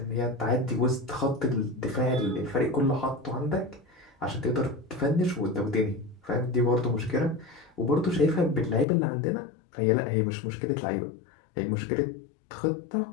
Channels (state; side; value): drops out; right; at 8.8 s